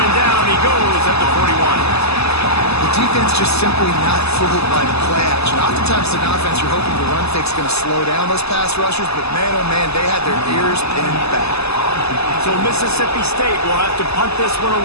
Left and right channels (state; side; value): late; right; 0.79 ms